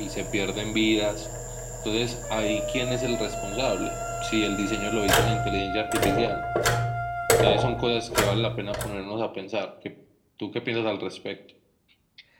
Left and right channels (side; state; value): both; identical; correlation 1.00